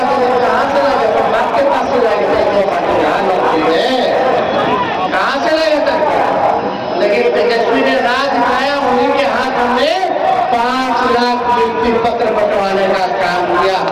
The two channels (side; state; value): both; identical; correlation 1.00